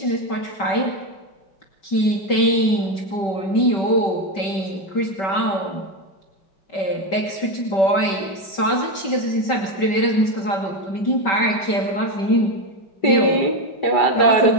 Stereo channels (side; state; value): right; late; 5.2 ms